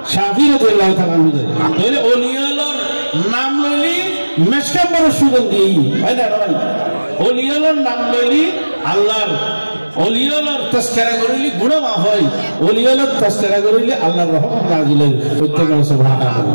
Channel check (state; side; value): inverted; both; correlation -1.00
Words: শাফি রাদিয়াল্লাহু তাআলা তাহলে ওলিয়ালর নাম লইলি মেশকাম্বরের সুগন্ধি হয় না ভাই ওলিয়ালর নাম লইলি আল্লাহর ওলিয়ালর তাসকিরা করিলি গুনাহ মাফ হয় ওলিয়ালর তাসকিরা করিলি আল্লাহর রহমত নাযিল হয় প্রত্যেক